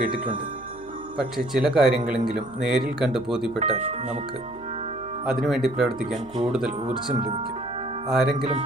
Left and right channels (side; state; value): right; noise; hum, 22 dB below the sound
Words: പക്ഷേ ചില കാര്യങ്ങളെങ്കിലും നേരിൽ കണ്ട് ബോധ്യപ്പെട്ടാൽ നമുക്ക് അതിനുവേണ്ടി പ്രവർത്തിക്കാൻ കൂടുതൽ ഊർജം ലഭിക്കും. ആരെങ്കിലും